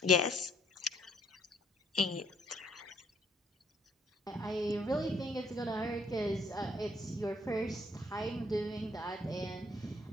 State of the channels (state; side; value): normal; both; correlation 0.66